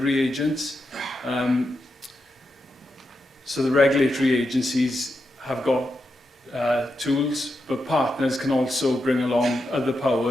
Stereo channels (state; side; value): normal; both; correlation 0.86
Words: agents. So the regulatory agencies have got tools, but partners can also bring along other